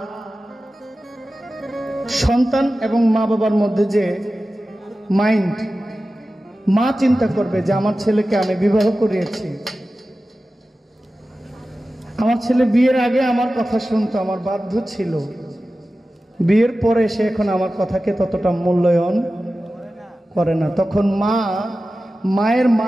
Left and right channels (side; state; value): both; normal; correlation 0.95